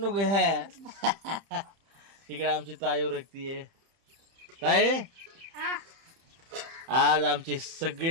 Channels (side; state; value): left; late; 30 ms